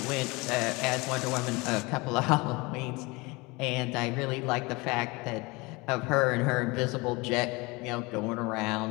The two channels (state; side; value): quieter; right; 24.9 dB